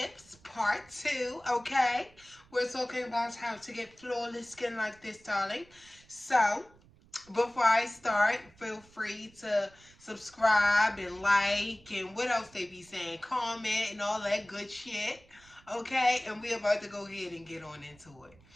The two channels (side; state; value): right; noise; rumble, 27 dB below the sound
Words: part 2, okay? We're talking about how to get flawless skin like this, darling. So, before I start, feel free to subscribe and like and what else they be saying, comment and all that good shit, okay? And we're about to go ahead and get on into it.